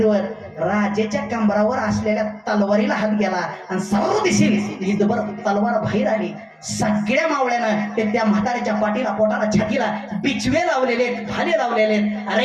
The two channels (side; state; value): both; identical; correlation 1.00